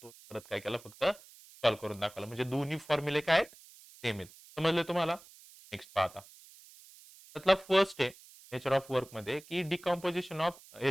परत काय केला, फक्त सॉल्व्ह करून दाखवला, म्हणजे दोन्ही फॉर्म्युले काय आहेत, सेम आहेत. समजले तुम्हाला. नेक्स्ट पाहता, त्यातला फर्स्ट आहे नेचर ऑफ वर्क मध्ये की डिकम्पोजिशन ऑफ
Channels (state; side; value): noise; right; hiss, 22 dB below the sound